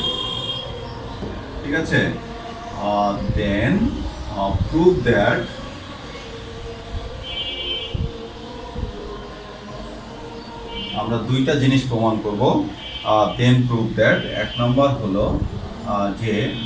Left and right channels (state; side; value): identical; both; correlation 1.00